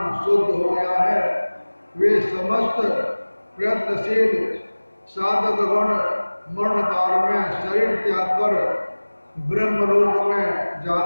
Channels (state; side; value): inverted; both; correlation -1.00